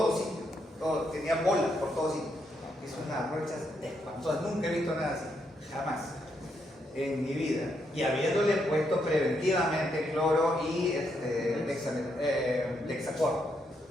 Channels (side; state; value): both; normal; correlation 0.78